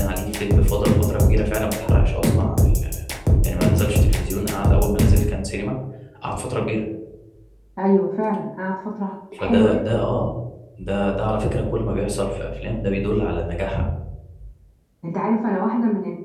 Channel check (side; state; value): both; identical; correlation 1.00